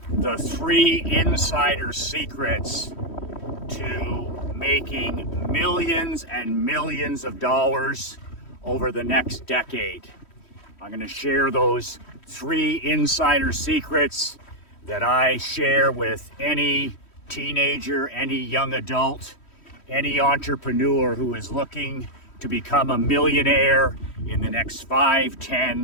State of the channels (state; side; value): late; right; 3.1 ms